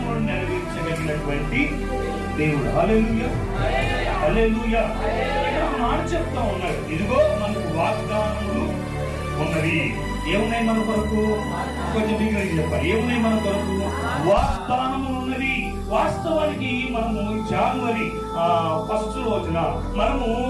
నెరవేర్చగలిగినటువంటి దేవుడు. హల్లెలూయా, హల్లెలూయా. ఇక్కడ మాట చెప్తా ఉన్నాడు, ఇదిగో మనకు వాగ్దానములు ఉన్నవి. ఏమున్నాయి మన కొరకు? కొంచెం మీకు చెప్పాలి. ఏమున్నాయి మన కొరకు? వాగ్దానములు ఉన్నవి. వాస్తవానికి మనము జనవరి 1st రోజున మనము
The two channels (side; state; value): both; identical; correlation 1.00